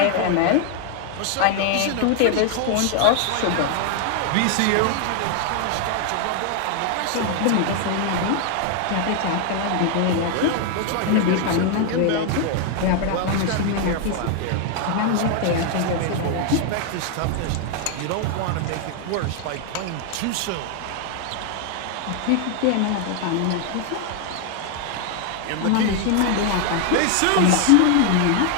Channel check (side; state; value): both; different; correlation 0.00